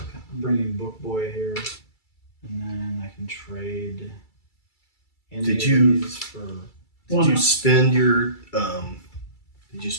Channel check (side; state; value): right; late; 2.3 ms